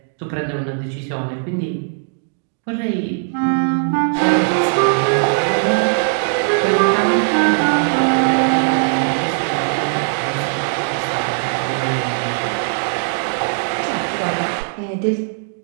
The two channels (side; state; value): left; silent; digital silence